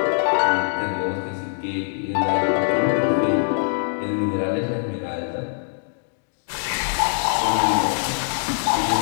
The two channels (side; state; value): right; silent; digital silence